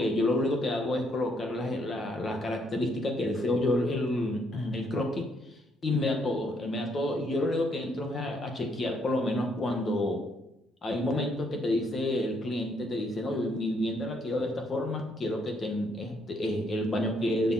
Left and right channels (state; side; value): normal; both; correlation 0.72